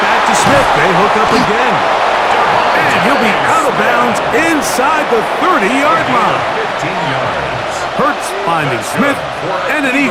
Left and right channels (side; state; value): both; identical; correlation 1.00